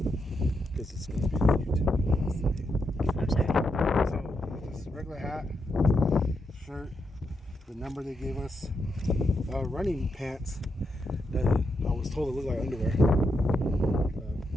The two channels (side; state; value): both; normal; correlation 0.83